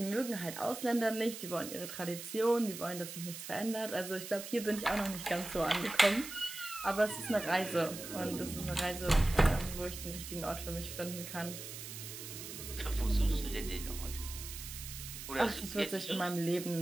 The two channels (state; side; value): noise; right; hiss, 10 dB below the sound